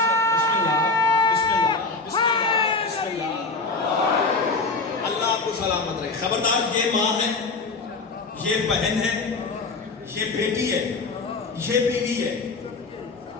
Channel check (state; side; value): quieter; right; 3.8 dB